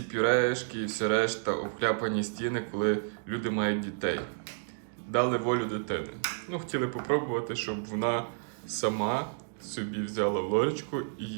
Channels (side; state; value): left; silent; digital silence